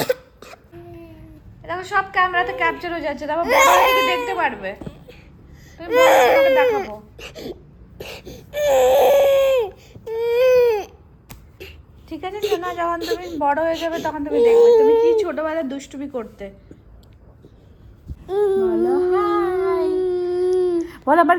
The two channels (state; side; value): identical; both; correlation 1.00